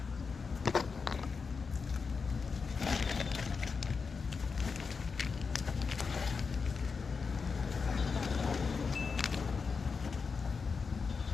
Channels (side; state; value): right; quieter; 5.1 dB